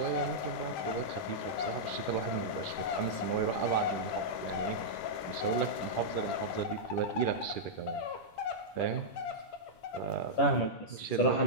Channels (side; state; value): right; late; 10 ms